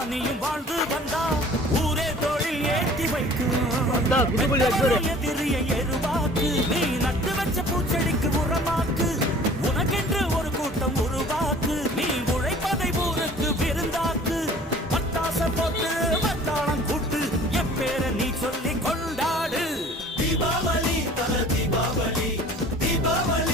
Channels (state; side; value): normal; both; correlation 0.48